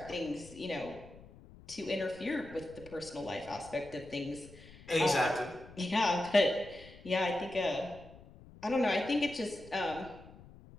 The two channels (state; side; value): noise; left; rumble, 20 dB below the sound